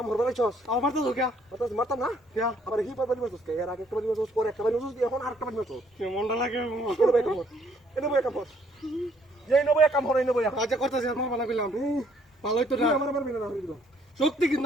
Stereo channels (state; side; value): normal; both; correlation 0.66